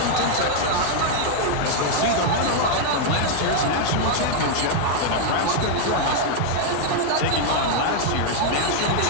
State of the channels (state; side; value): different; both; correlation -0.01